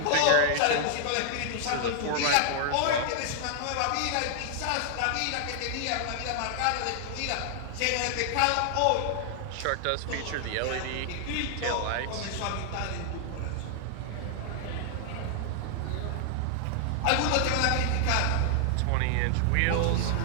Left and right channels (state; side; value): different; both; correlation 0.00